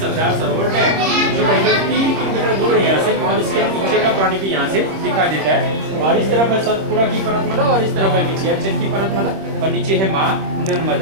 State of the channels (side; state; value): left; late; 26 ms